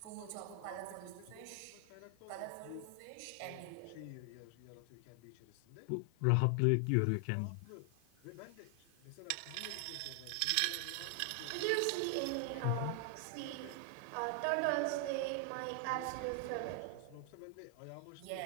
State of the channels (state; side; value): different; both; correlation 0.00